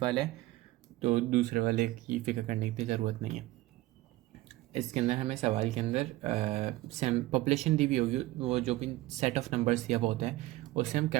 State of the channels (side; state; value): left; quieter; 17.7 dB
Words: वाला है, तो दूसरे वाले की फिक्र करने की ज़रूरत नहीं है। इसके अंदर हमें सवाल के अंदर पॉपुलेशन दी हुई होगी, वो जो कि सेट ऑफ नंबर्स दिया हुआ होता है, उसे हम